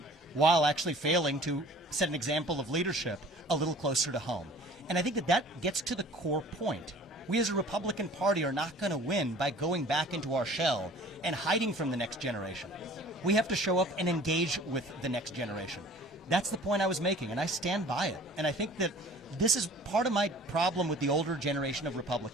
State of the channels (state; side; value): normal; both; correlation 0.48